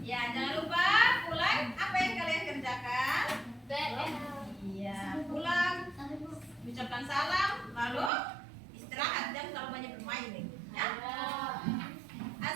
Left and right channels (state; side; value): drops out; left; at 8.1 s